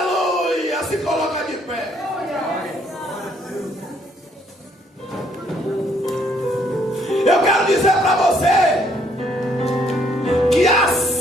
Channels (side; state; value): both; normal; correlation 0.67